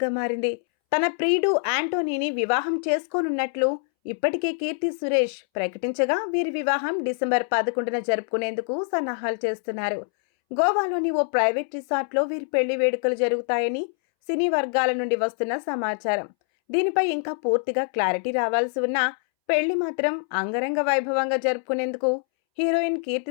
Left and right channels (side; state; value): right; silent; 62 dB below the other